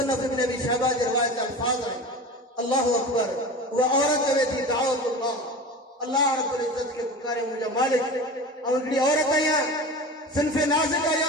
इब्न अबी शैबा जे रिवायत अल्फाज़ आहिनि। अल्लाहु अकबर। उहा औरत चवे थी दाऊदुल्लाह, अल्लाह रब्बुल इज्जत खे पुकारे मुंहिंजा मालिक। ऐं हिकिड़ी औरत आहियां, सिन्फ़े नाज़िक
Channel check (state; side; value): normal; both; correlation 0.32